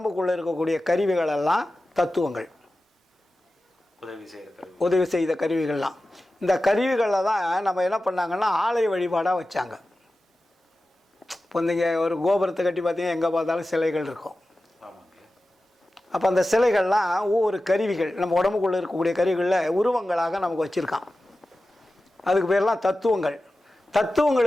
இருக்கக்கூடிய கருவிகள் எல்லாம் தத்துவங்கள், உதவி செய்த கருவிகள்லாம். இந்த கருவிகளில் தான் நம்ம என்ன பண்ணாங்கன்னா ஆலய வழிபாடாக வச்சாங்க. இப்போ நீங்கள் ஒரு கோபுரத்தை கட்டி பார்த்தீங்கன்னா எங்கே பார்த்தாலும் சிலைகள் இருக்கும். அப்போ அந்த சிலைகள்லாம் ஒவ்வொரு கருவிகள், நம்ம உடம்புக்குள்ளே இருக்கக்கூடிய கருவிகளில் உருவங்களாக நமக்கு வச்சுருக்கான். அதுக்கு பேர்லாம் தத்துவங்கள்.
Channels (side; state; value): both; normal; correlation 0.94